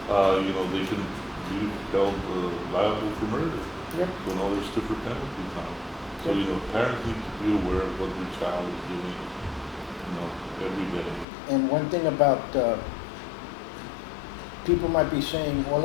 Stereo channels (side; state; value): right; drops out; at 11.2 s